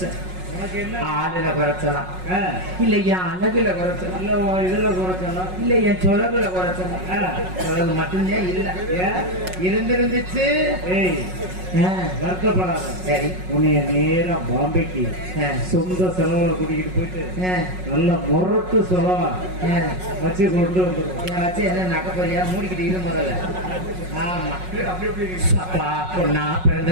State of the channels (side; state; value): left; late; 5.4 ms